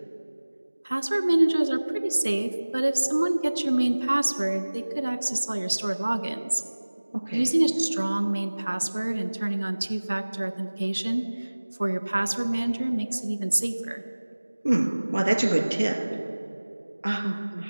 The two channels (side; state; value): both; inverted; correlation -1.00